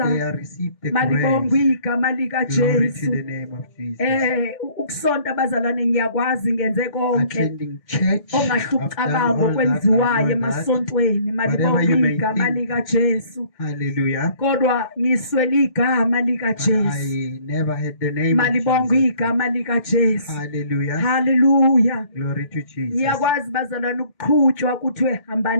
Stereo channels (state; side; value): late; right; 2.1 ms